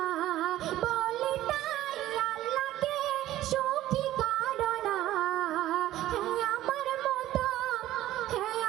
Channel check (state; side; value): quieter; left; 14.4 dB